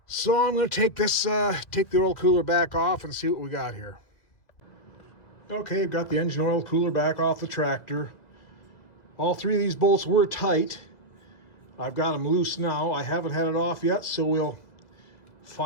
So I'm going to take the oil cooler back off and see what we got here. Okay, I've got the engine oil cooler back off the tractor. All three of these bolts were tight. I've got them loose now. I haven't had it off yet, so we'll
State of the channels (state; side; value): late; right; 2.0 ms